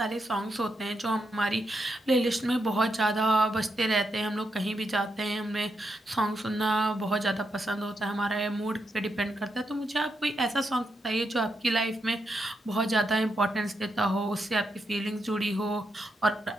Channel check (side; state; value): both; normal; correlation 0.83